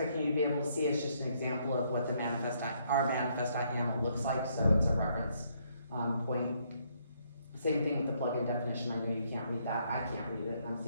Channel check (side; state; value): both; inverted; correlation -0.71